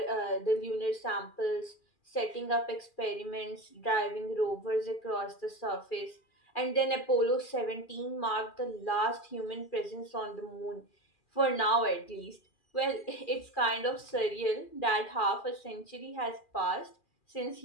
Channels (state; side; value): late; right; 2.4 ms